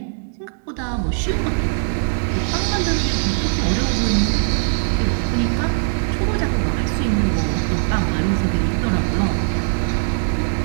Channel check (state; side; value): silent; left; digital silence